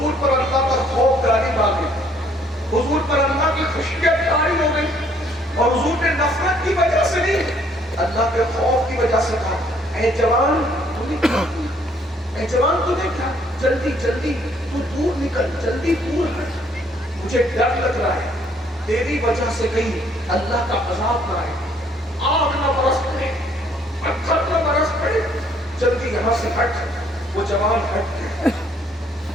پر اللہ کا خوف غالب آ گئی، حضور پر اللہ کی خشیت طاری ہو گئی، اور حضور نے نفرت کی وجہ سے نہیں، اللہ کے خوف کی وجہ سے کہا اے جوان تو نے کیا کیا، اے جوان تو نے کیا، جلدی جلدی تو دور نکل، جلدی دور ہٹ، مجھے ڈر لگ رہا ہے تیری وجہ سے کہیں اللہ کا عذاب نہ آئے، آگ نہ برس پڑے، پتھر نہ برس پڑے، جلدی یہاں سے ہٹ۔ وہ جوان ہٹ گیا،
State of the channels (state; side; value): normal; both; correlation 0.64